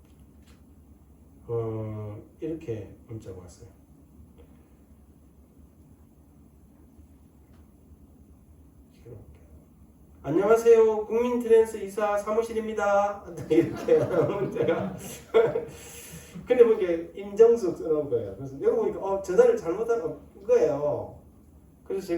이렇게 문자가 왔어요. 안녕하세요. 국민트랜스 이사 사무실입니다. 이렇게 문자가. 근데 보니까 임정숙 써놓은 거예요. 그래서 내가 보니까 전화를 잘못한 거예요. 그래서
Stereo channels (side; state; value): both; identical; correlation 1.00